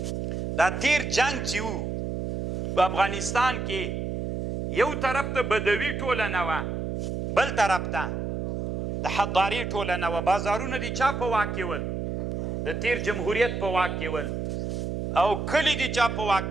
دا تیر جنگ چې و په افغانستان کې یو طرف ته بدوي ټولنه وه، بل طرف ته د حضاري ټولنه وه. بازارونه د چا په واک کې ول؟ د تیر جمهوریت په واک کې ول. او کلي د چا په واک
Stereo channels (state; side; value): noise; right; hum, 3 dB below the sound